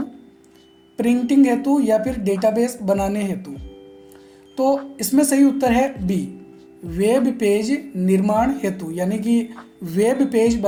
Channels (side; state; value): both; identical; correlation 1.00